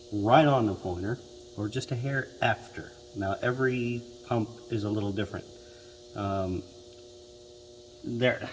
right on the pointer, or just a hair after. Now every pump is a little different. And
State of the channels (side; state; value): both; identical; correlation 1.00